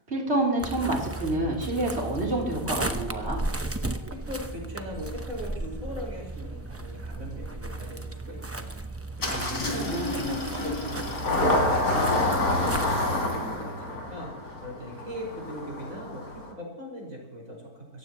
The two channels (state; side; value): normal; both; correlation 0.05